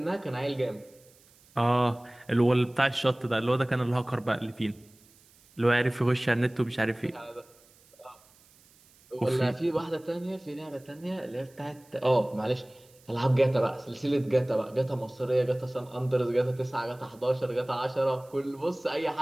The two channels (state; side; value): noise; right; hiss, 29 dB below the sound